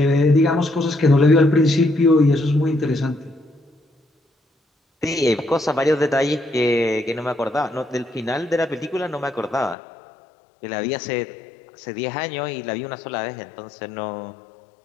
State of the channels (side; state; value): right; drops out; at 9.8 s